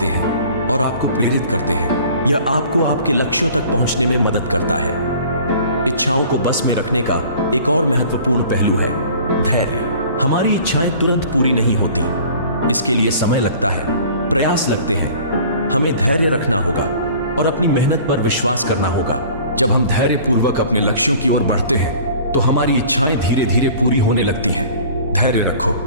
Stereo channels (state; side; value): inverted; both; correlation -0.47